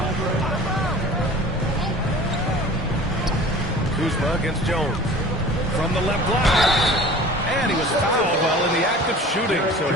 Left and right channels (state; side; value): normal; both; correlation 0.42